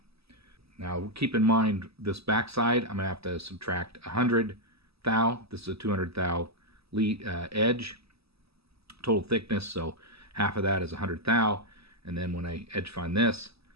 Now keep in mind this back side, I'm going to have to subtract 100 thou. This is a 200 thou edge, total thickness, so half of that is 100 thou. And then when I edge find this,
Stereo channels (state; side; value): late; left; 0.78 ms